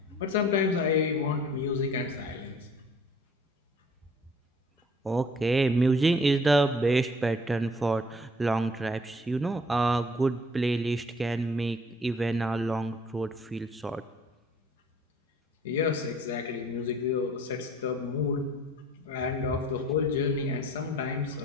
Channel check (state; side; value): normal; both; correlation 0.55